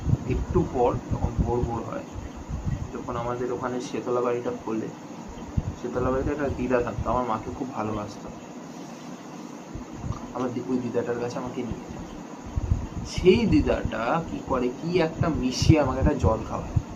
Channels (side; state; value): both; identical; correlation 1.00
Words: একটু পর যখন ভোর হয়, যখন আমাদের ওখানে শেতলা বাড়িটা খোলে, শেতলা বাড়িতে একটা দিদা থাকতো, আমার মাকে খুব ভালোবাসতো। আমার ওই দিদাটার কাছে আমাকে নিয়ে যায়। সেই দিদাটা কি করে, কি একটা মিশিয়ে আমাকে একটা জল খাওয়ায়,